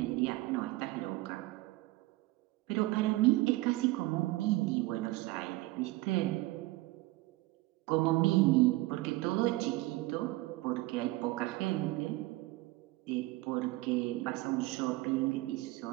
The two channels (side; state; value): left; quieter; 19.5 dB